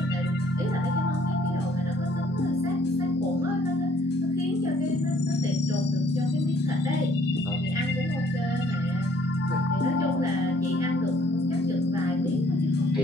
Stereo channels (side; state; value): both; normal; correlation 0.61